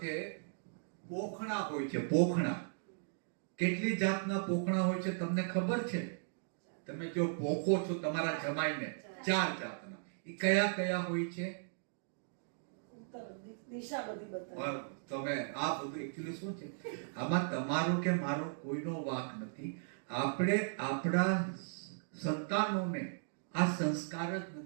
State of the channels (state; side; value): silent; left; digital silence